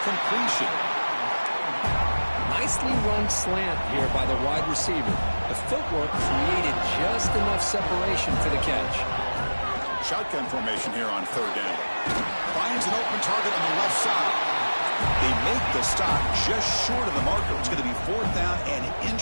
completion. Nicely run slant here by the wide receiver. The footwork created just enough separation for the catch. Shotgun formation here on third down. Finds an open target on the left side. They make the stop just short of the marker. It's going to be fourth down and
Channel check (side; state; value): both; inverted; correlation -1.00